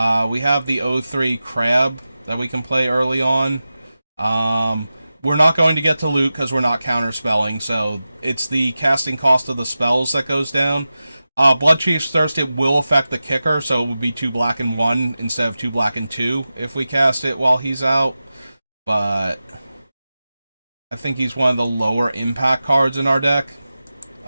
We have the O3 Crab that we can play early on. We're not going to get to loot because we're not counterspelling, so it's the casting cost of the spells that goes down. Bloodchief's Thirst, it will affect the kicker, so it would be 2 black and 1 instead of 2 black and 2 if we cast it while he's out. But I think he's one of the lower impact cards in our deck.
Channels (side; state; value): both; inverted; correlation -0.94